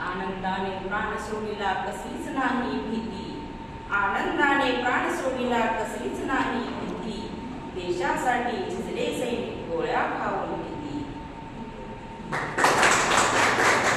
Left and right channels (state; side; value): identical; both; correlation 1.00